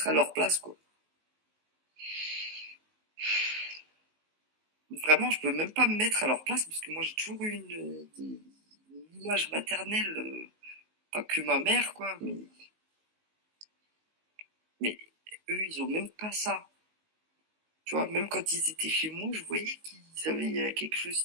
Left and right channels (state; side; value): late; left; 19 ms